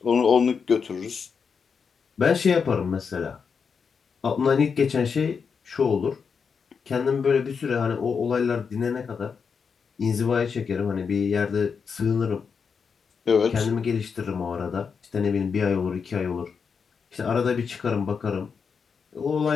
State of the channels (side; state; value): right; quieter; 6.0 dB